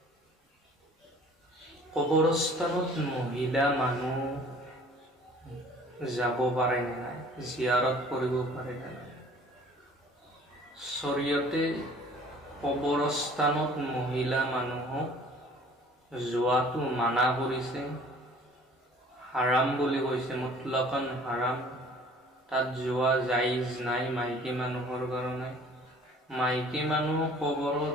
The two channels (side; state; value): both; normal; correlation 0.51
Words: কবৰস্থানত মহিলা মানুহ যাব পাৰে নে নাই, জিয়াৰত কৰিব পাৰে নে নাই? শৰীয়তে কবৰস্থানত মহিলা মানুহক যোৱাটো মানা কৰিছে, হাৰাম বুলি কৈছে, মুতলাকান হাৰাম। তাত যোৱা জাইজ নাই মাইকী মানুহৰ কাৰণে। মাইকী মানুহ